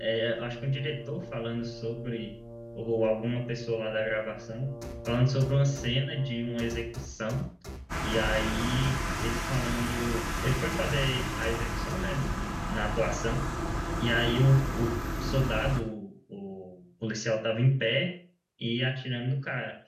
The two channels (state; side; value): identical; both; correlation 1.00